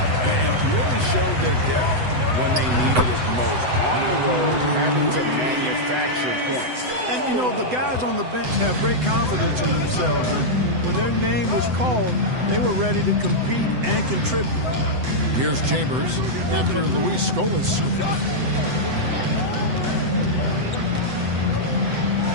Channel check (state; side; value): late; left; 8.0 ms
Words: And really showed their depth when they needed it most. On the road, having to manufacture points. And, you know, the guys on the bench have great confidence in themselves. And when their name was called, they were ready to compete and contribute. Here's Chambers after Luis Scola's scoop.